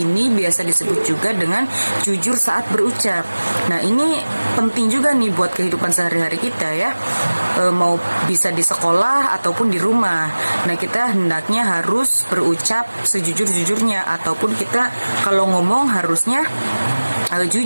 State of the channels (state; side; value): inverted; both; correlation -1.00